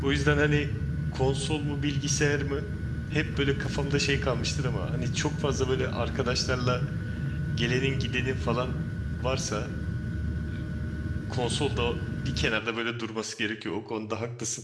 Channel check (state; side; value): identical; both; correlation 1.00